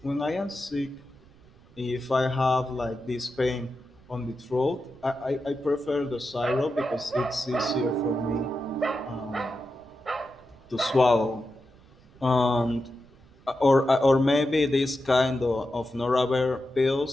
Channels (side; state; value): right; noise; rumble, 26 dB below the sound